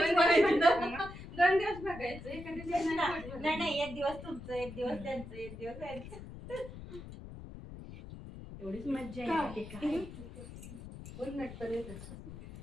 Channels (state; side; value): noise; left; rumble, 13 dB below the sound